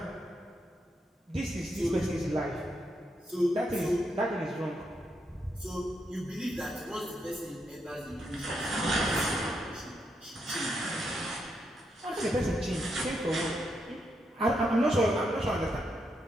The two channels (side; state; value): both; normal; correlation 0.81